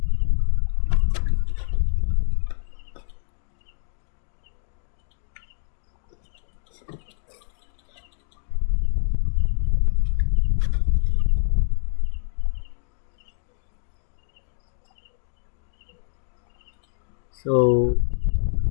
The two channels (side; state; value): right; silent; 60 dB below the other